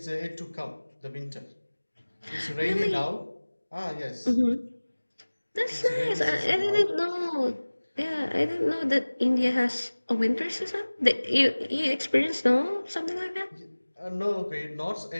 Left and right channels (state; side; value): inverted; both; correlation -1.00